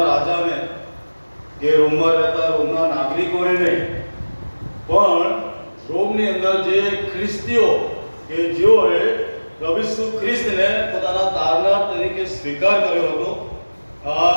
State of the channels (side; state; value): both; inverted; correlation -1.00